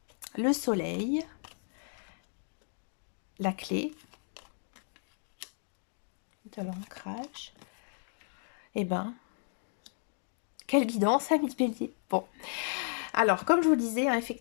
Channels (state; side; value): silent; right; digital silence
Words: Le soleil. La clé. De l'ancrage. Quelle guidance, amis bélier. Bon. Alors, comme je vous disais,